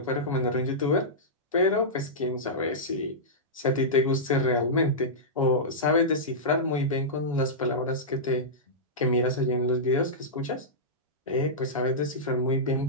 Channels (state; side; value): normal; both; correlation -0.13